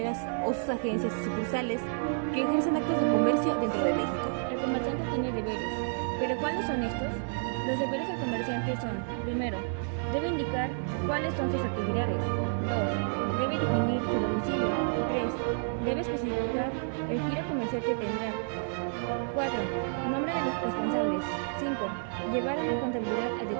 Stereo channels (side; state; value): left; silent; 58 dB below the other